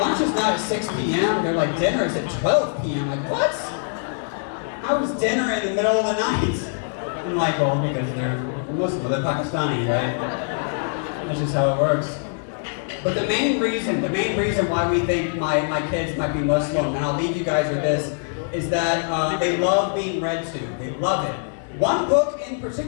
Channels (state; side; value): silent; right; 63 dB below the other